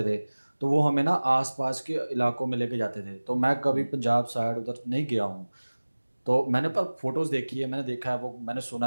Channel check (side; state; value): both; inverted; correlation -1.00